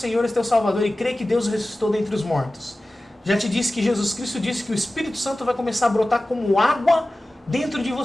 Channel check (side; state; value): both; normal; correlation 0.96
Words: e teu Salvador, e crê que Deus o ressuscitou dentre os mortos. Já te disse que Jesus Cristo disse que o Espírito Santo vai começar a brotar como água dentro de